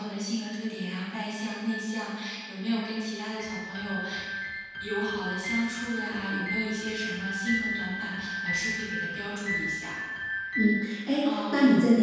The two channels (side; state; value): both; identical; correlation 1.00